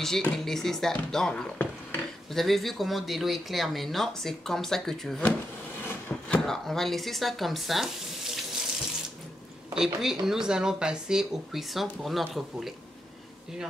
de laisser ça dans l'eau. Vous avez vu comment de l'eau est claire maintenant. C'est comme ça que tu veux. Alors, on va laisser ça comme ça. Et puis, nous allons passer au cuisson pour notre poulet.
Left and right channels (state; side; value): normal; both; correlation 0.83